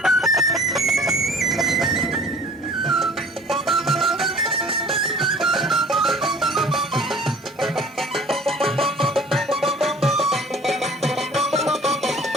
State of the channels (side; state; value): both; normal; correlation 0.49